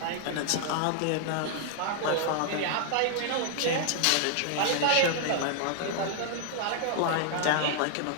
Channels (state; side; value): different; both; correlation -0.01